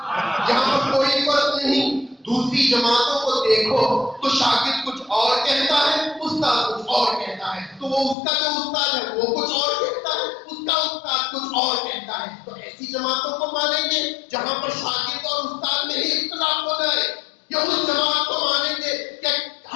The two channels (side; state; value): right; drops out; at 8.2 s